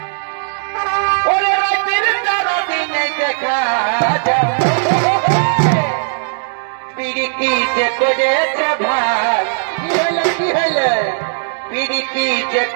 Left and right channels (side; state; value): left; silent; digital silence